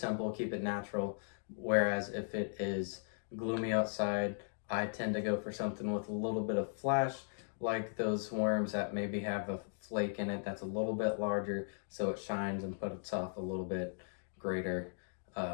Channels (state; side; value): silent; right; digital silence